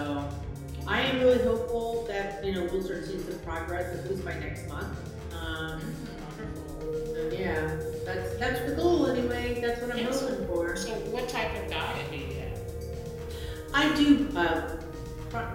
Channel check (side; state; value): both; identical; correlation 1.00